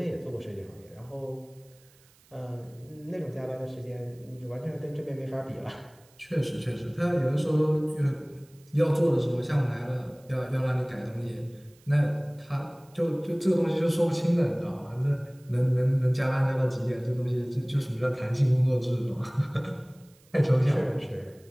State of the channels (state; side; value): noise; right; hiss, 30 dB below the sound